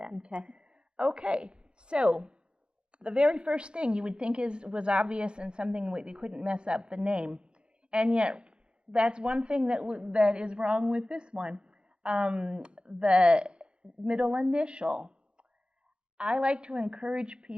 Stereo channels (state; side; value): late; left; 0.053 ms